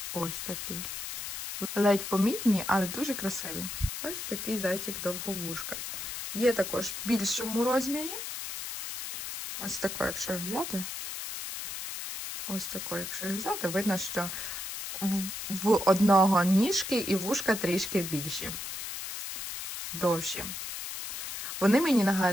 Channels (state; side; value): noise; left; hiss, 6 dB below the sound